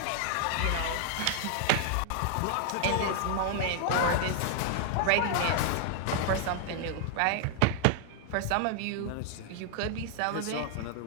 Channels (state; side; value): different; both; correlation 0.00